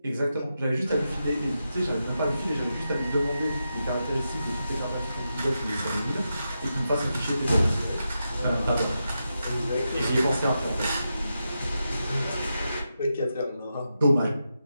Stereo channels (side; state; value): both; inverted; correlation -0.87